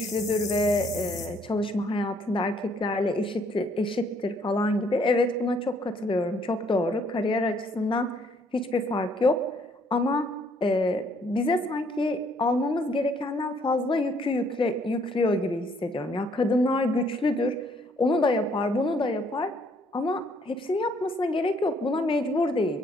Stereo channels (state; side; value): normal; both; correlation 0.66